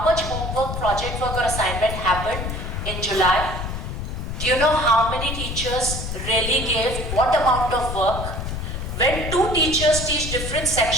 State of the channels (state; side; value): noise; left; rumble, 5 dB below the sound